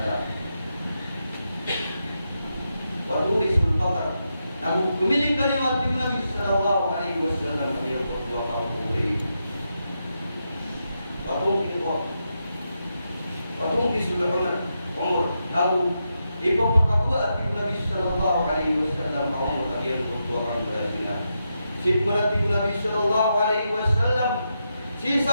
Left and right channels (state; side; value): inverted; both; correlation -0.85